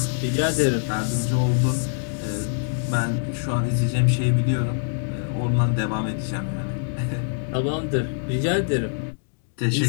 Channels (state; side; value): silent; right; digital silence